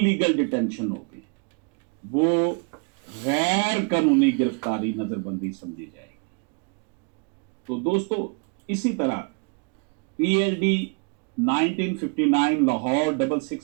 डिटेंशन होगी, वो गैर कानूनी गिरफ्तारी नजरबंदी समझी जाएगी। तो दोस्तों, इसी तरह PLD 1959 लाहौर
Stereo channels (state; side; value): quieter; left; 34.7 dB